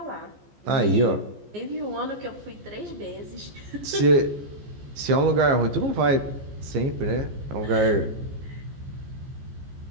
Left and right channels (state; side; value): late; left; 14 ms